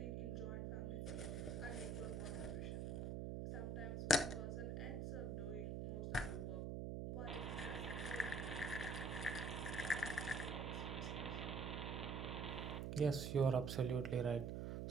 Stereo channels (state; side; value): noise; right; hum, 2 dB below the sound